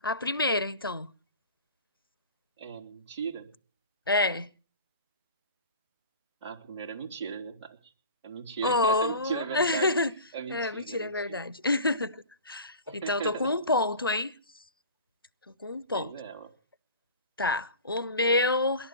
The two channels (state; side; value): inverted; both; correlation -0.38